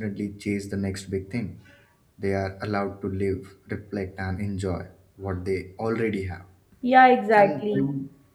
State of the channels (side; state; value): both; identical; correlation 1.00